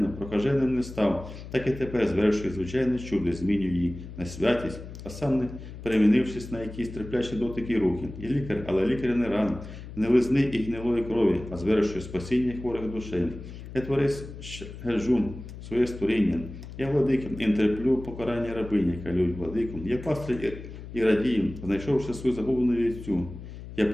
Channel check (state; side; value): noise; left; hum, 12 dB below the sound